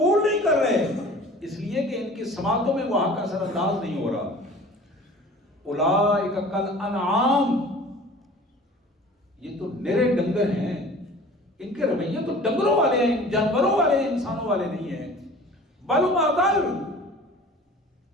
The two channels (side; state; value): both; normal; correlation 0.44